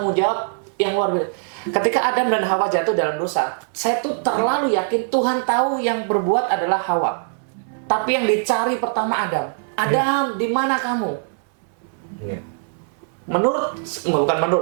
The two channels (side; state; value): left; silent; digital silence